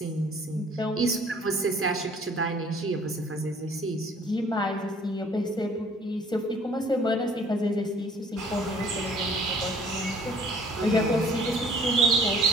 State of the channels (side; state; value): both; normal; correlation 0.54